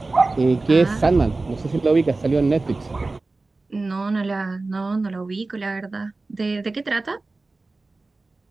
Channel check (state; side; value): quieter; left; 3.4 dB